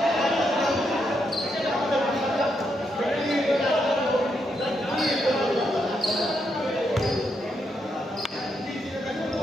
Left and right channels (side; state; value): both; normal; correlation 0.80